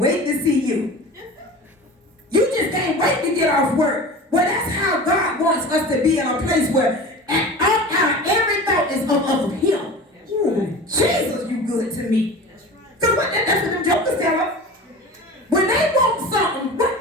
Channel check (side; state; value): both; normal; correlation 0.35